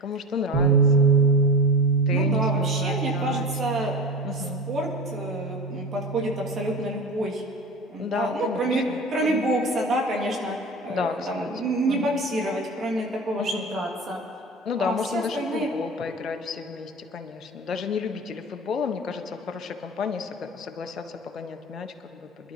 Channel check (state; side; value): normal; both; correlation 0.31